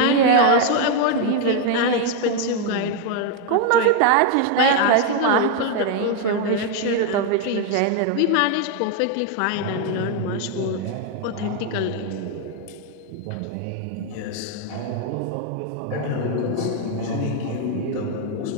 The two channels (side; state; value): both; different; correlation 0.01